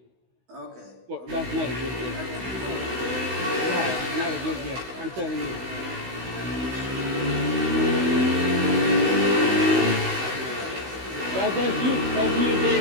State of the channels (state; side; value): late; left; 16 ms